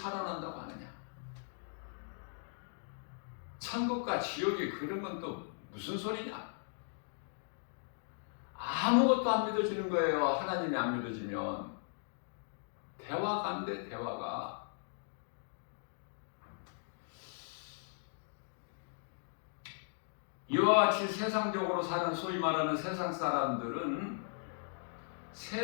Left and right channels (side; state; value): right; silent; digital silence